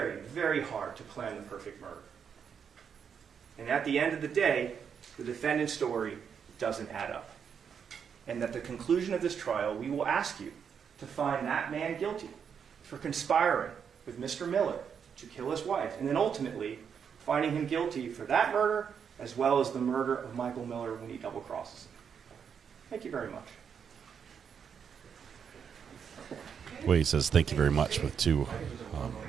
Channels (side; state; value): left; quieter; 7.2 dB